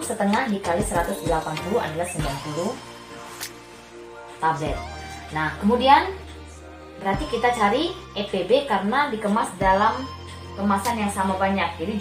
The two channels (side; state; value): both; identical; correlation 1.00